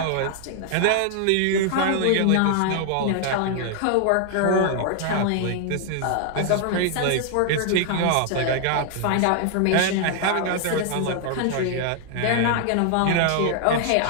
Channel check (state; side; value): different; both; correlation 0.00